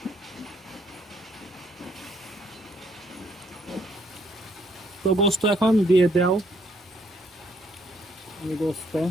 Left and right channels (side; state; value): both; normal; correlation 0.69